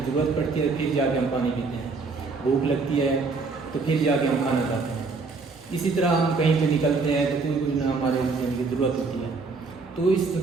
ضرورت پڑتی ہے پھر جا کے ہم پانی پیتے ہیں. بھوک لگتی ہے تو پھر جا کے ہم کھانا کھاتے ہیں. اسی طرح ہم کہیں پہ نکلتے ہیں تو کوئی نہ ہمارے کی ضرورت ہوتی ہے. تو اس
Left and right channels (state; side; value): quieter; left; 4.2 dB